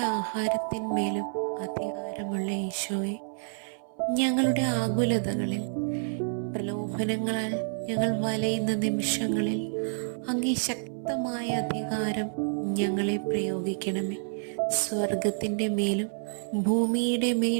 ആഹാരത്തിന്മേലും അധികാരമുള്ള ഈശോയെ, ഞങ്ങളുടെ ആകുലതകളിൽ പ്രലോഭനങ്ങളാൽ ഞങ്ങൾ വലയുന്ന നിമിഷങ്ങളിൽ അങ്ങേ ശക്തമായ അധികാരം ഞങ്ങളെ പ്രയോഗിക്കണമേ. സ്വർഗത്തിൻ്റെ മേലും ഭൂമിയുടെ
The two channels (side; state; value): left; silent; 59 dB below the other